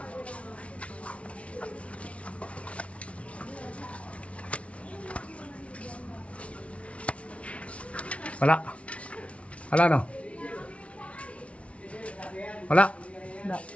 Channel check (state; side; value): late; right; 0.062 ms